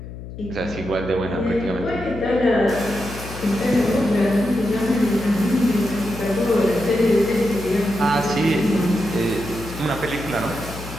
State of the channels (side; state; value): left; noise; hum, 12 dB below the sound